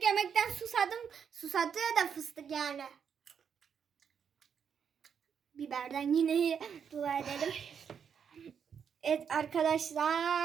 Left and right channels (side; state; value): left; quieter; 7.3 dB